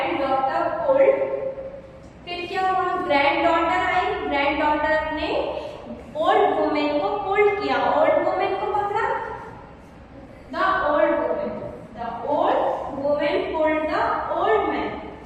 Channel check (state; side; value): identical; both; correlation 1.00